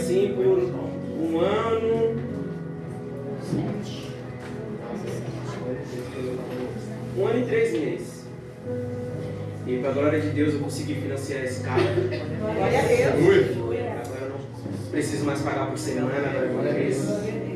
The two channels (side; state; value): both; identical; correlation 1.00